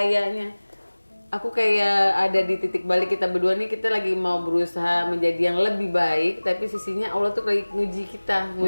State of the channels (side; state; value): both; inverted; correlation -1.00